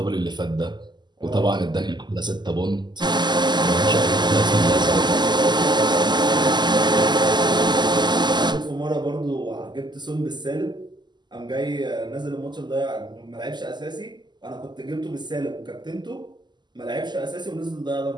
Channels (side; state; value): left; late; 0.21 ms